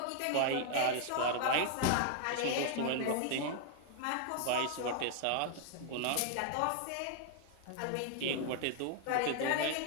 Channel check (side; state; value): both; different; correlation 0.00